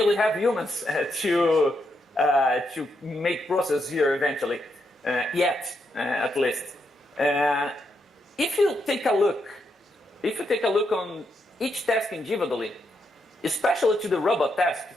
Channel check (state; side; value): normal; both; correlation 0.81